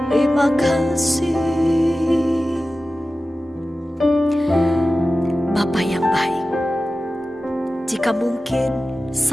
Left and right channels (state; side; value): normal; both; correlation 0.95